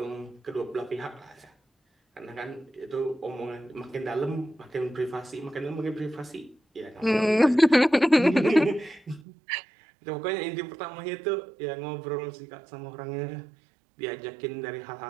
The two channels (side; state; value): left; drops out; at 9.2 s